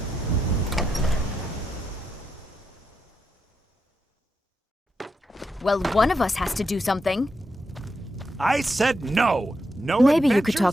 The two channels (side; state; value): both; normal; correlation 0.84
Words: Well, one of us has to do something. I said no. No. Maybe you could